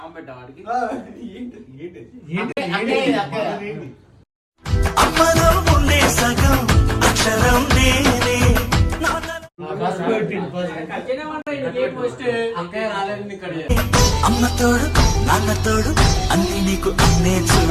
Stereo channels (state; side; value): identical; both; correlation 1.00